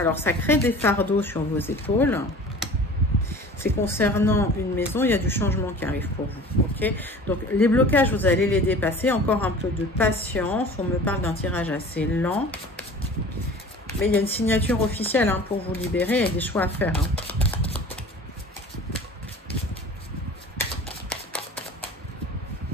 ça crée des fardeaux sur vos épaules. C'est concernant une maison, il y a du changement qui arrive pour vous. Ok, donc les blocages, vous allez les dépasser. Encore un peu de patience. On me parle d'un tirage assez lent. Mais il y a une signature officielle hein, pour vous libérer et des choix à faire. Hein.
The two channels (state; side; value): normal; both; correlation 0.42